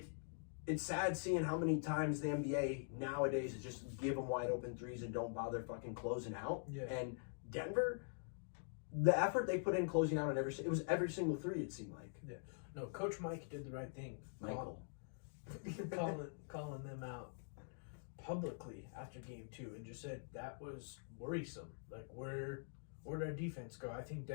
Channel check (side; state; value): right; silent; digital silence